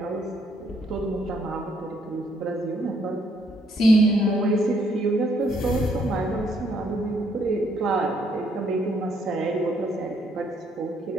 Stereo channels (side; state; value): both; normal; correlation 0.70